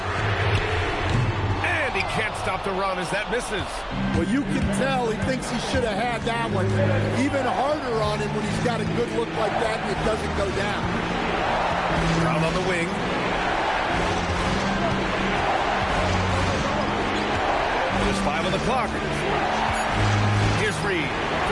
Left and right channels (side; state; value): both; identical; correlation 1.00